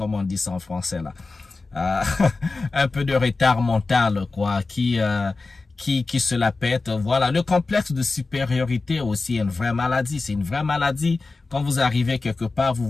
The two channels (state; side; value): quieter; right; 3.7 dB